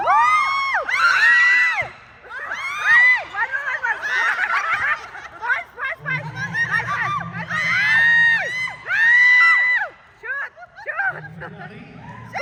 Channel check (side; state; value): both; identical; correlation 1.00